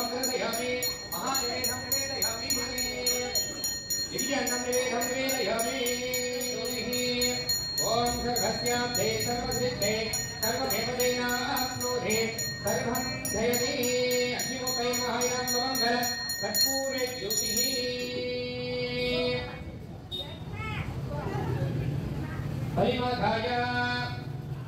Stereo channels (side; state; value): both; identical; correlation 1.00